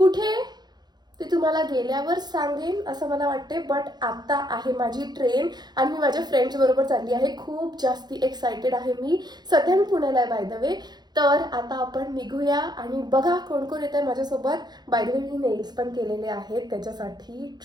ते तुम्हाला गेल्यावर सांगेन असं मला वाटते. बट आता आहे माझी ट्रेन आणि मी माझ्या फ्रेंड्स बरोबर चालली आहे. खूप जास्ती एक्सायटेड आहे मी. सध्या मी पुण्याला आहे बाय द वे. तर आता आपण निघूया आणि बघा कोण कोण येत आहे माझ्यासोबत. By the way me nails पण केलेले आहेत त्याच्यासाठी,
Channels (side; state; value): left; late; 0.20 ms